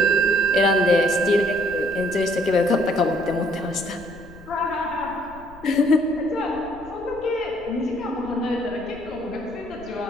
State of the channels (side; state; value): left; noise; rumble, 21 dB below the sound